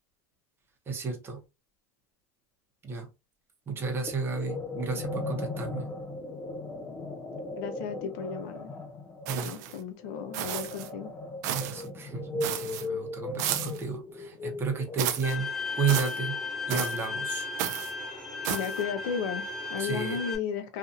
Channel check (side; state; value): both; normal; correlation 0.30